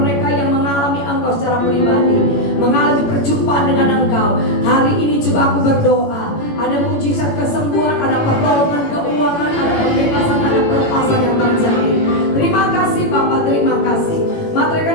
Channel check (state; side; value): late; right; 18 ms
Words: yang mengalami Engkau secara pribadi, mengalami perjumpaan dengan Engkau. Hari ini juga aku berdoa, ada mujizat kesembuhan, ada pertolongan keuangan, ada pembebasan, ada pelepasan yang terjadi. Terima kasih Bapa, terima kasih. Materaikan